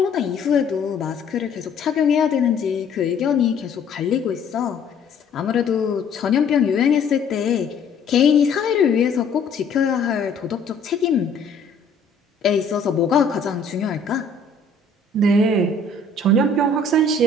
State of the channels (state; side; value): quieter; right; 4.0 dB